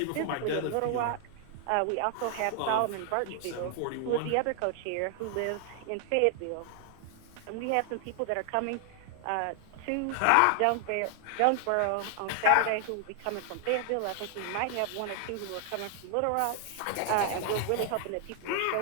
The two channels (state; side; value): different; both; correlation 0.00